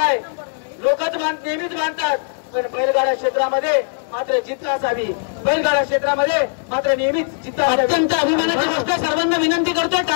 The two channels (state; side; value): silent; right; 66 dB below the other